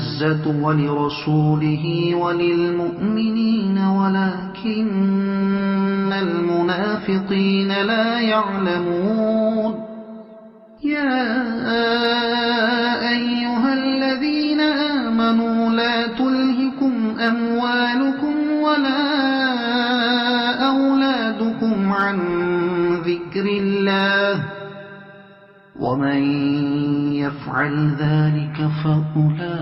ولرسوله وللمؤمنين ولكن المنافقين لا يعلمون يا أيها الذين آمنوا لا تلهكم أموالكم ولا أولادكم عن ذكر الله ومن يفعل ذلك فأولئك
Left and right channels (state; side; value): identical; both; correlation 1.00